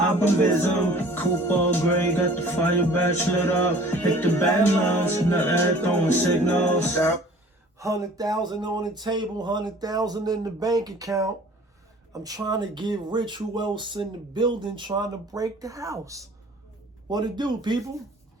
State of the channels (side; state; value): both; normal; correlation 0.49